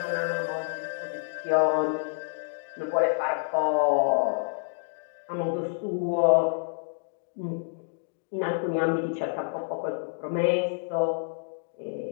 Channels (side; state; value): right; silent; digital silence